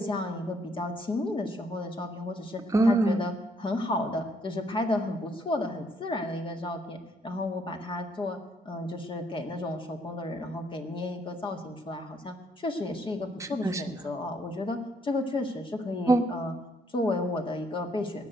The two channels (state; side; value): normal; both; correlation 0.69